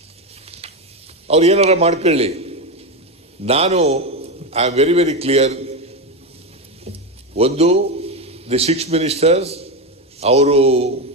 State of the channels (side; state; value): both; normal; correlation 0.13